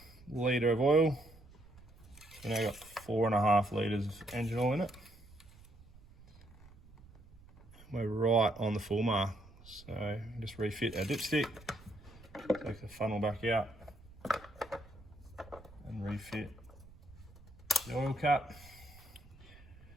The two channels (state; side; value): noise; right; rumble, 21 dB below the sound